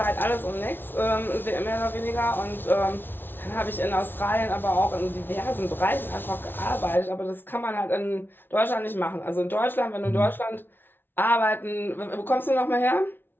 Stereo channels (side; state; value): right; late; 0.10 ms